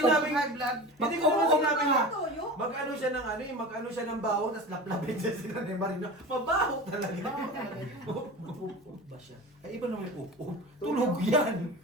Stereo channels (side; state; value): both; normal; correlation 0.32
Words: high blood. Hindi ko naman sinabing na. Toyo? Mag-ano siya ng ano, yung mag-ano siya ng bawang, tapos laplapin siya sila ni Marino. Mabaho talaga. Baho talaga yun. Ba siya? Ay, iba naman yung upo. Tulog yan.